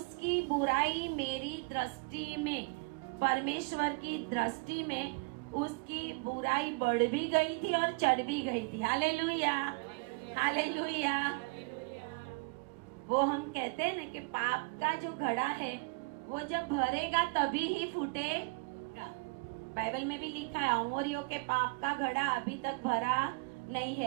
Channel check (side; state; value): left; quieter; 30.5 dB